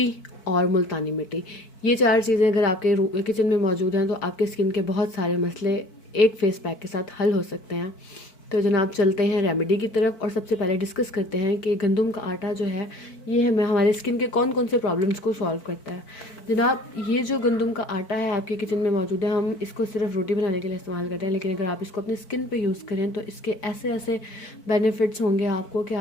और मुल्तानी मिट्टी। ये चार चीज़ें अगर आपके किचन में मौजूद हैं तो आपके स्किन के बहुत सारे मसले एक फेस पैक के साथ हल हो सकते हैं। तो जनाब, चलते हैं रेमेडी की तरफ और सबसे पहले डिस्कस करते हैं कि गंदम का आटा जो है ये हमें हमारे स्किन के कौन कौन से प्रॉब्लम्स को सॉल्व करता है। जनाब, ये जो गंदम का आटा है आपके किचन में मौजूद है, हम इसको सिर्फ रोटी बनाने के लिए इस्तेमाल करते हैं, लेकिन अगर आप इसको अपनी स्किन पे यूज़ करें तो इसके ऐसे ऐसे बेनिफिट्स होंगे आपको कि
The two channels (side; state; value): right; late; 4.6 ms